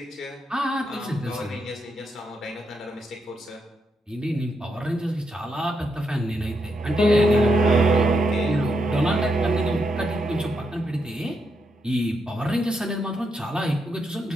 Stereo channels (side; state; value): both; normal; correlation 0.81